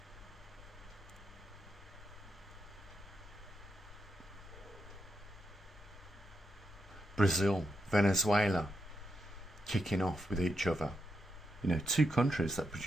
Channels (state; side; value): normal; both; correlation 0.83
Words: Brazil, Venezuela, kicking off with each other. You know, two countries that